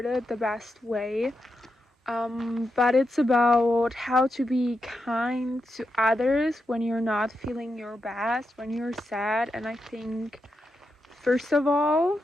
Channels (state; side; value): normal; both; correlation 0.86